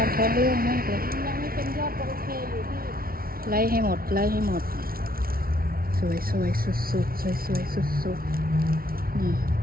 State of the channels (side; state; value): left; late; 0.43 ms